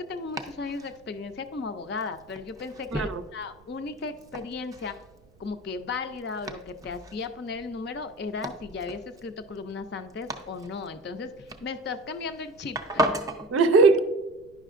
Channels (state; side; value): noise; right; rumble, 28 dB below the sound